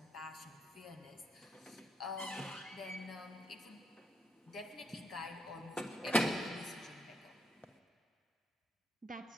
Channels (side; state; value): both; normal; correlation 0.77